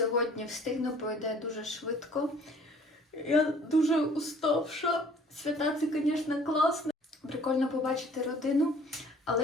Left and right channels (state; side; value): normal; both; correlation 0.54